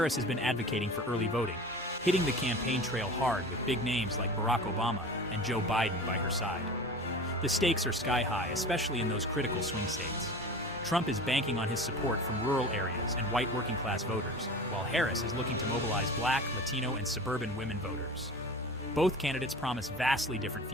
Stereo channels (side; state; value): both; normal; correlation 0.36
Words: has been advocating for early voting, hitting the campaign trail hard with big names like Barack Obama and Joe Biden by her side. The stakes are sky high, especially in those critical swing states. Trump is banking on his support from rural areas and white working-class voters, while Harris is looking to mobilize Black, Latino, and suburban women voters. Both candidates promise vastly different